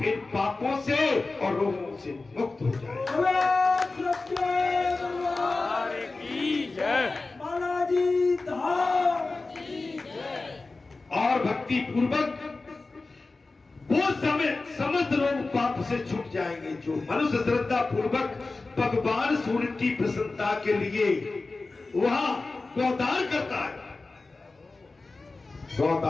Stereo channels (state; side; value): quieter; right; 3.6 dB